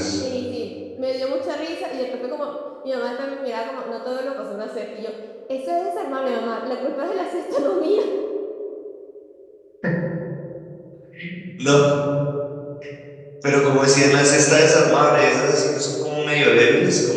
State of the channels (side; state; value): both; identical; correlation 1.00